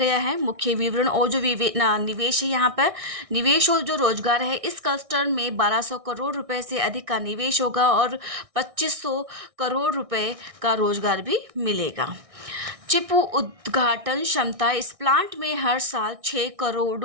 है। मुख्य विवरण और जो निवेश है, यहाँ पर निवेश और जो रोजगार है, इस क्लस्टर में 1200 करोड़ रुपए से अधिक का निवेश होगा और 2500 करोड़ रुपए का रोजगार भी मिलेगा। चिप उद्घाटन क्षमता, इस प्लांट में हर साल 6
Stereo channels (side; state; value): left; late; 1.6 ms